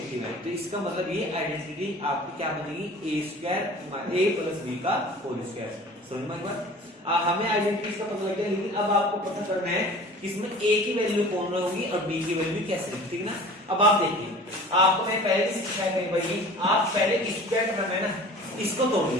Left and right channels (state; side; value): normal; both; correlation 0.43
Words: है, तो इसका मतलब ये आइडेंटिटी आपकी क्या बनेगी, a प्लस बी का होल स्क्वायर। समझ में एक बार, हमें आइडेंटिटी का पता लग गया, लेकिन अब आपको पता करना है कि इसमें a की वैल्यू कौन होगी और b की वैल्यू कैसे होगी, ठीक है ना। अब आप देखिए, आपको मैं पहले ही सिखाया कहीं भाई, आप पहले स्क्वायर टर्म है ना, इसको तोड़